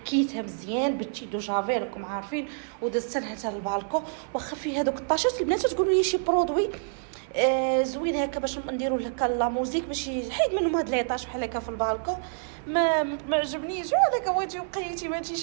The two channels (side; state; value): left; silent; 60 dB below the other